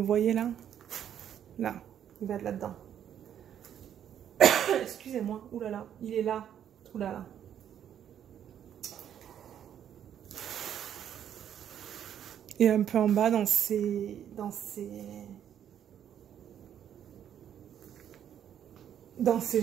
voyez là? Là, il va être là-dedans. Excusez-moi, oulala, il est là, oulala. Et un peu en bas dans ses jambes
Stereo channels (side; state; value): left; quieter; 9.7 dB